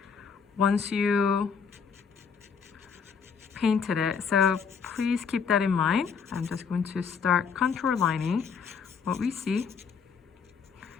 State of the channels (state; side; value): quieter; right; 6.2 dB